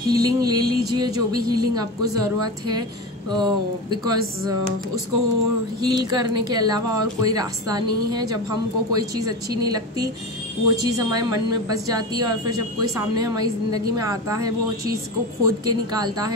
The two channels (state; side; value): normal; both; correlation 0.24